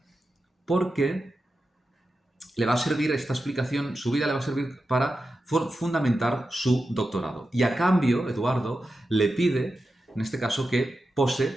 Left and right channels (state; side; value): normal; both; correlation 0.91